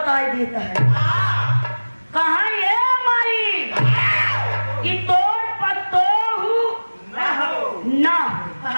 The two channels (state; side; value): inverted; both; correlation -1.00